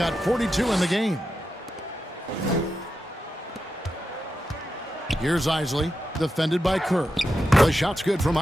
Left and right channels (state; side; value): normal; both; correlation 0.89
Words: 42 in the game. Here's Isley, defended by Kerr. The shot's good from